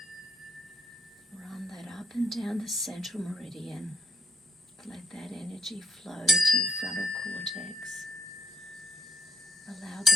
Run that up and down the central meridian. Let that energy flow to your frontal cortex. Allow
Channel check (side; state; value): both; normal; correlation 0.74